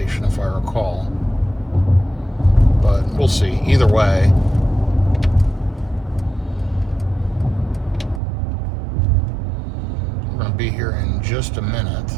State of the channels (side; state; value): left; drops out; at 8.2 s